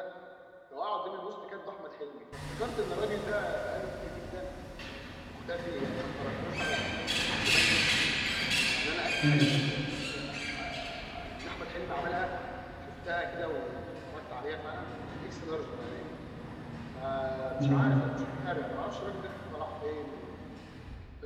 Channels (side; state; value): both; identical; correlation 1.00